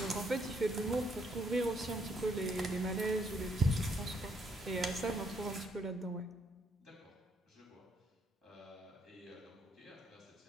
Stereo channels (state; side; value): normal; both; correlation 0.71